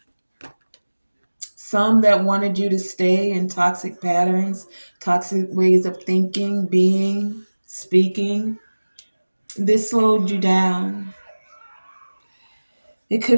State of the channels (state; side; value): inverted; both; correlation -1.00